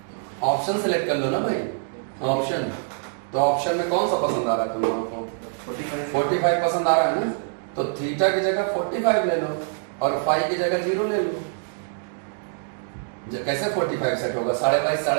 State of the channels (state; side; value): silent; left; digital silence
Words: ऑप्शन सेलेक्ट कर लो ना भाई, ऑप्शन। तो ऑप्शन में कौन सा पसंद आ रहा है तुम लोगों को? 45 पसंद आ रहा है ना, तो थीटा की जगह 45 ले लो, और फाइव की जगह 0 ले लो। कैसे 45 सेट होगा?